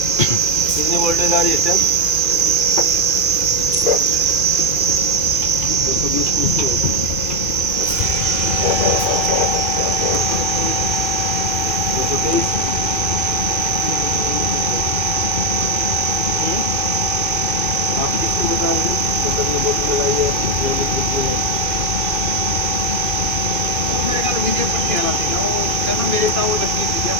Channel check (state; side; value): late; left; 2.5 ms